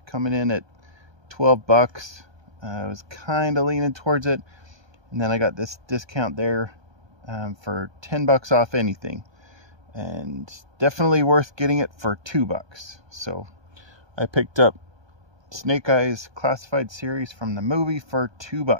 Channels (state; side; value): late; left; 1.2 ms